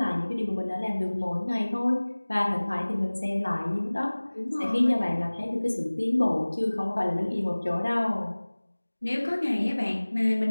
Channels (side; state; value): both; inverted; correlation -1.00